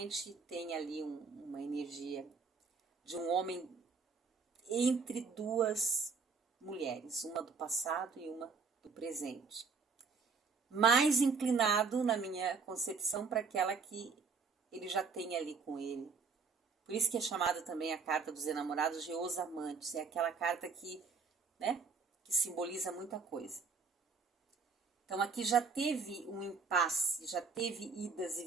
tem ali uma energia de um homem entre 2 mulheres, uma do passado e uma do presente. Mais inclinado, na minha concepção, para aquela que ele já tem ali com ele. Por isso que é chamada também a carta dos enamorados de Os Amantes. É aquela carta que, né, que simboliza muita coisa. Então aqui já teve um impasse, já teve idas e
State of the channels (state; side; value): quieter; left; 5.3 dB